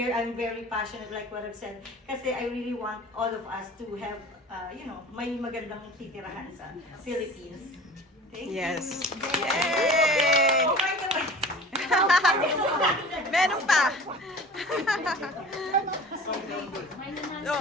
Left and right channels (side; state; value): both; normal; correlation 0.41